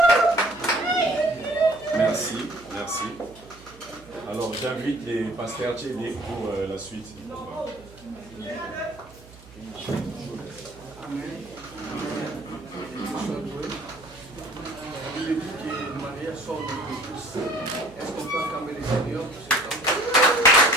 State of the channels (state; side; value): noise; right; hum, 22 dB below the sound